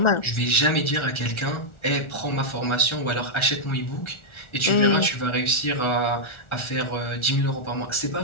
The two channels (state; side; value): late; right; 1.4 ms